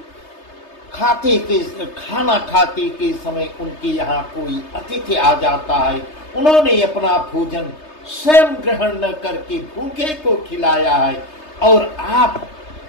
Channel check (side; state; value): right; late; 3.3 ms